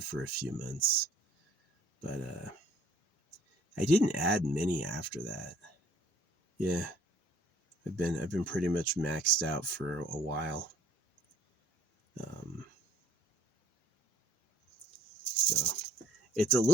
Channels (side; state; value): both; normal; correlation 0.59